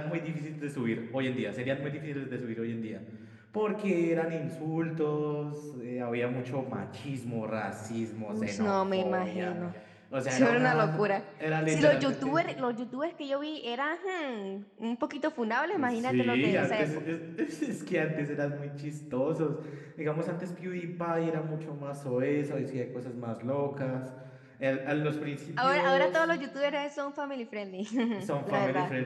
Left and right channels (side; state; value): both; identical; correlation 1.00